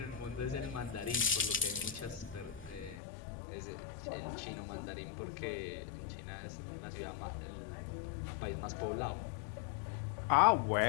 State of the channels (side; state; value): right; drops out; at 3.0 s